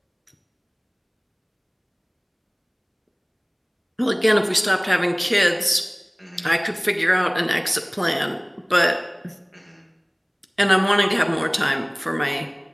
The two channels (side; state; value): both; identical; correlation 1.00